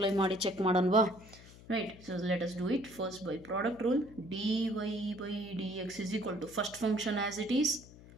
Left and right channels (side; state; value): left; noise; hum, 20 dB below the sound